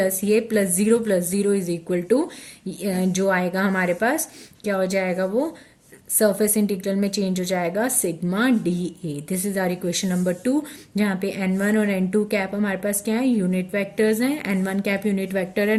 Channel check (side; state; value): both; identical; correlation 1.00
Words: 0 इज इक्वल टू जो आएगा हमारे पास क्या हो जाएगा, वो सरफेस इंटीग्रल में चेंज हो जाएगा sigma dA। This is our equation number 2, जहाँ पे n1 और n2 कैप हमारे पास क्या है, यूनिट वेक्टर्स हैं। n1 कैप यूनिट वेक्टर है